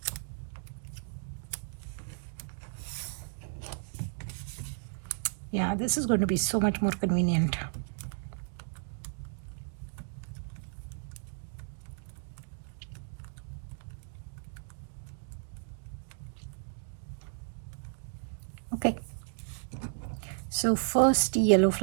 Yeah, this is going to be so much more convenient. Okay, so first yellow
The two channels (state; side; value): silent; left; digital silence